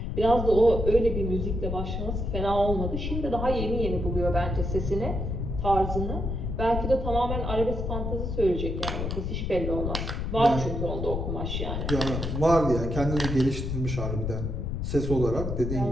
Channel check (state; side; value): noise; left; rumble, 3 dB below the sound